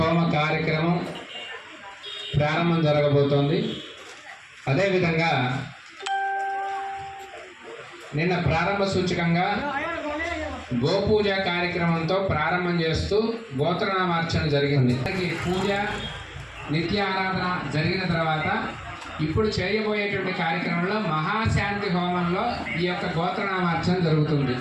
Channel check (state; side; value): identical; both; correlation 1.00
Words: కార్యక్రమం ప్రారంభం జరగబోతోంది. అదేవిధంగా నిన్న ప్రారంభ సూచకంగా గోపూజ కార్యక్రమంతో ప్రారంభం చేస్తూ గోత్రనామార్చన జరిగింది. పూజ నిత్య ఆరాధన జరిగిన తర్వాత ఇప్పుడు చేయబోయేటువంటి కార్యక్రమంలో మహాశాంతి హోమంలో ఈ యొక్క గోత్రనామార్చన జరుగుతుంది.